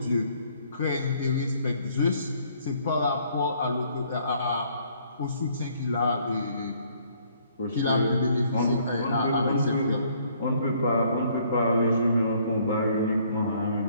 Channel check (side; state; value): both; inverted; correlation -0.63